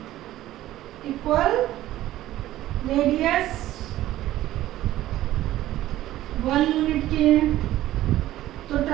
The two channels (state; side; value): quieter; left; 14.5 dB